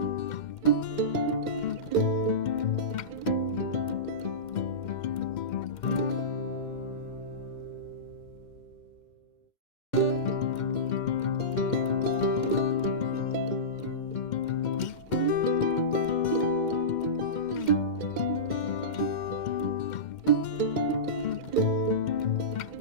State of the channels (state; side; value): late; right; 2.1 ms